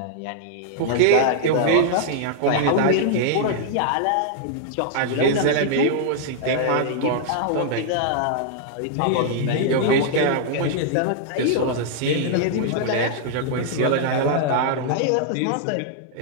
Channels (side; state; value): both; different; correlation -0.01